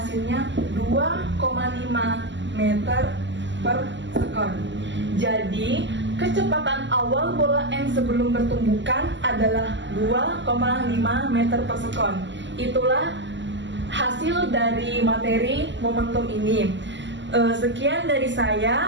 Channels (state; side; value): late; left; 0.54 ms